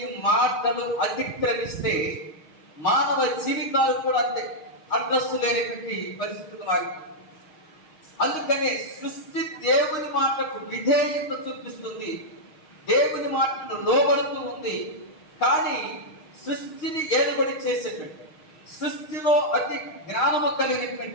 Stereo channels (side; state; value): right; late; 6.4 ms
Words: మాటలు అతిక్రమిస్తే మానవ జీవితాలు కూడా అంతే అడ్రస్ లేనటువంటి పరిస్థితులు మారిపోయింది. అందుకనే సృష్టి దేవుని మాటకు విధేయత చూపిస్తుంది, దేవుని మాటను లోబడుతూ ఉంది. కానీ సృష్టిని ఏలుబడి చేసేటువంటి, సృష్టిలో అతి జ్ఞానము